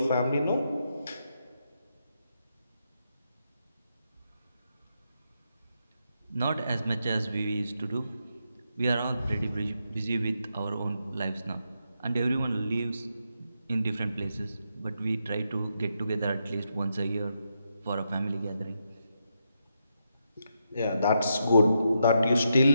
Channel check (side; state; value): both; inverted; correlation -0.82